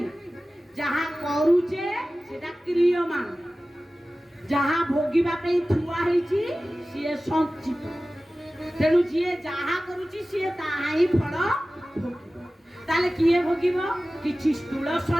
जहा करूचे सेटा क्रियमान ଯାହା ଭୋଗିବା ପାଇଁ ଥୁଆ ହେଇଛି ସିଏ ସଞ୍ଚିତ। ତେଣୁ ଯିଏ ଯାହା କରୁଛି ସିଏ ତାହା ହିଁ ଫଳ ଭୋଗିବ। ତାହେଲେ କିଏ ଭୋଗିବ? କିଛି ସ୍ଥୂଳ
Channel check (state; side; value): normal; both; correlation 0.96